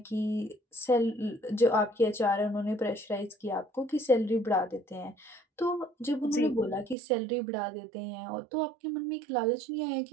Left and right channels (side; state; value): left; drops out; at 7.0 s